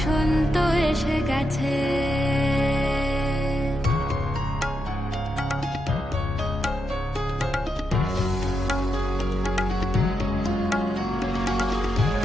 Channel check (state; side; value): normal; both; correlation 0.85